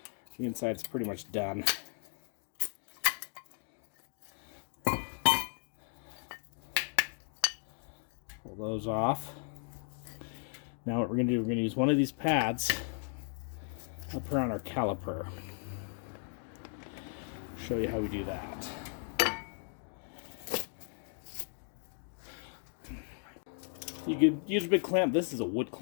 The inside's pretty much done. Pull those off. Now what we're going to do, we're going to use one of these pads up around our caliper. Show you how we do that. You could use a big clamp. This is a wood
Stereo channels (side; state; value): right; silent; 54 dB below the other